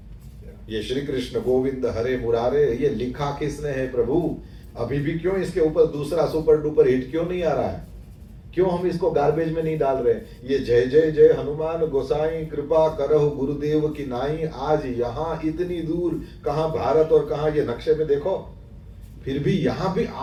ये श्री कृष्ण गोविंद हरे मुरारे, ये लिखा किसने है प्रभु? अभी भी क्यों इसके ऊपर दूसरा सुपर डुपर हिट क्यों नहीं आ रहा है? क्यों हम इसको गार्बेज में नहीं डाल रहे? ये जय जय जय हनुमान गोसाई कृपा करहु गुरुदेव की नाई, आज यहाँ इतनी दूर, कहाँ भारत और कहाँ ये नक्शे में देखो, फिर भी यहाँ भी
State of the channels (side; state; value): both; identical; correlation 1.00